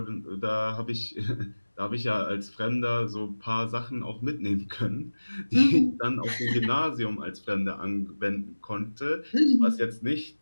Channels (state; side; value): inverted; both; correlation -1.00